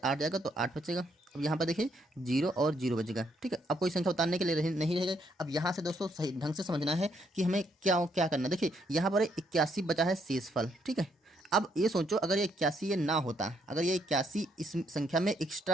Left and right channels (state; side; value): normal; both; correlation 0.73